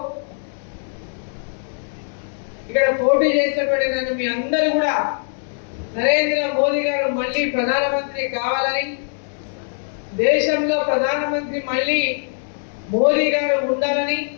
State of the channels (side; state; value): right; silent; digital silence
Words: ఇక్కడ పోటీ చేసినటువంటి నన్ను మీ అందరూ కూడా నరేంద్ర మోదీ గారు మళ్ళీ ప్రధానమంత్రి కావాలని, దేశంలో ప్రధానమంత్రి మళ్ళీ మోదీ గారు ఉండాలని,